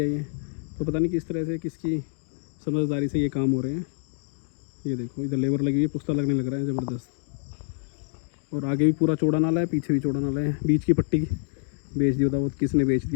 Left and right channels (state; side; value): silent; right; digital silence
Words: ये। तो पता नहीं किस तरह से, किसकी समझदारी से ये काम हो रहे हैं। ये देखो इधर लेबर लगी हुई है, पुश्ता लगने लग रहा है ज़बरदस्त। और आगे भी पूरा चौड़ा नाला है, पीछे भी चौड़ा नाला है। बीच की पट्टी बेच दी, बताओ किसने बेच